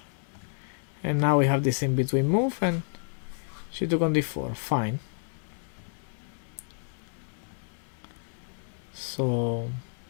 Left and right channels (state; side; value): silent; right; digital silence